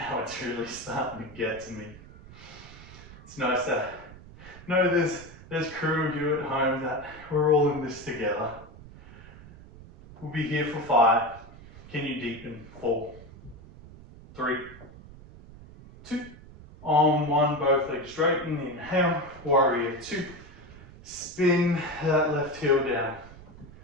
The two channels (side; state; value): right; noise; rumble, 19 dB below the sound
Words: it's really starting to get to me. It's nice to know there's crew of you at home that we're all in this together. We'll be here for 5. Can you deepen? 4, 3, 2. On 1, both legs straighten, inhale, warrior 2. Spin that left heel down,